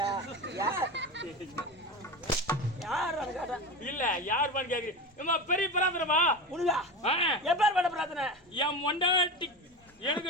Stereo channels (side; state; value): both; normal; correlation 0.26